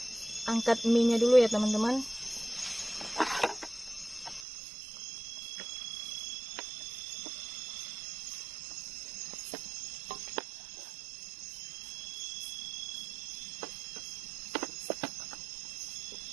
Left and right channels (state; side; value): drops out; left; at 4.5 s